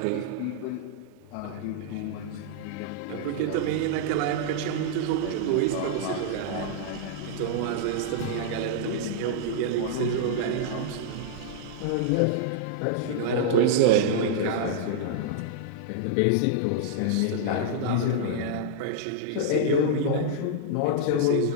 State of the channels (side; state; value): both; different; correlation -0.02